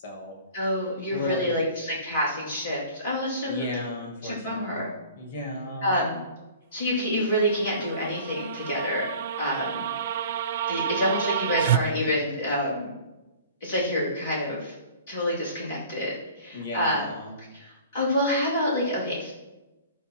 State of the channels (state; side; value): inverted; both; correlation -0.45